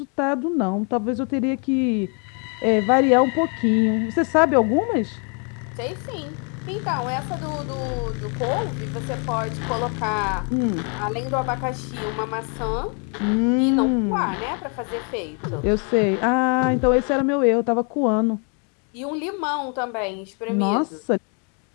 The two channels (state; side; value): quieter; right; 38.2 dB